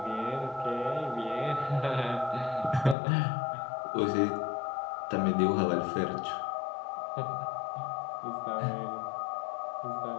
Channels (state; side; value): drops out; right; at 3.0 s